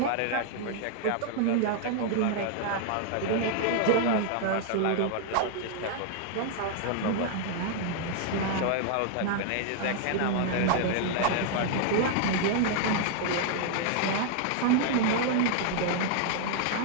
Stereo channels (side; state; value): both; different; correlation 0.00